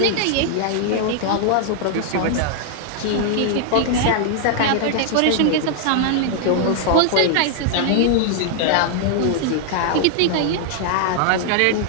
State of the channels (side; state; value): both; different; correlation -0.01